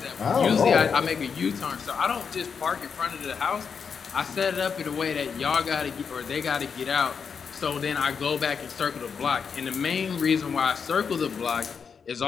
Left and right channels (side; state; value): right; quieter; 6.2 dB